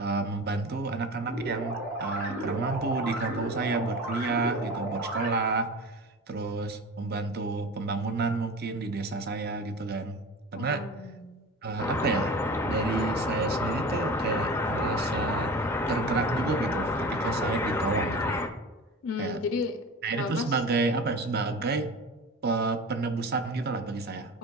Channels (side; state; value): both; normal; correlation 0.34